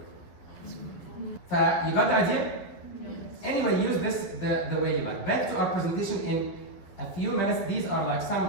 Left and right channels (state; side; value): late; right; 12 ms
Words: You got the idea? Anyway, use this the way you like. Back to our presentation in a few minutes. These are like